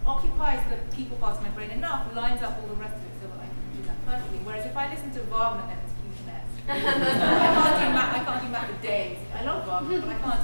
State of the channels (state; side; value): inverted; both; correlation -1.00